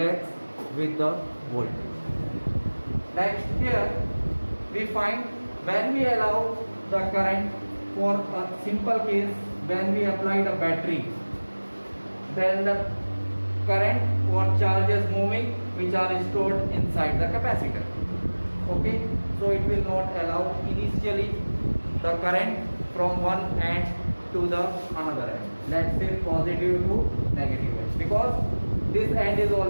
with the voltage. Next here we find when we allow the current, for a simple case, when we applied a battery, then the current or charges moving which are stored inside the capacitor. Okay, so it will not allow initially the current from one end to the another end, let's say positive to negative end, because this end is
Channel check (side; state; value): both; inverted; correlation -1.00